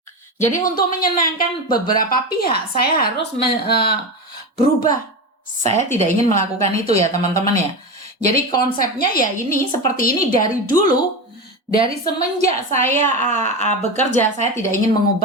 Jadi untuk menyenangkan beberapa pihak, saya harus berubah. Saya tidak ingin melakukan itu ya teman-teman ya. Jadi konsepnya ya ini seperti ini dari dulu, dari semenjak saya bekerja, saya tidak ingin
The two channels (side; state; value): both; normal; correlation 0.20